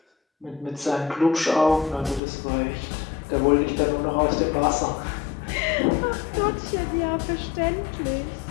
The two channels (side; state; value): right; drops out; at 2.2 s